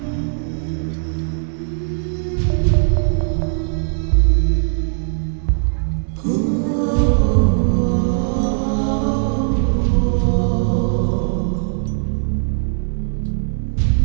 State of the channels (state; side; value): silent; left; digital silence